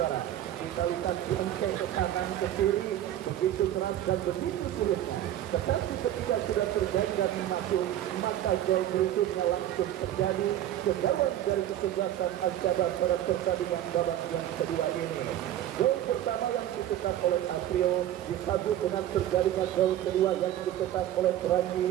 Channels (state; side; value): quieter; left; 12.2 dB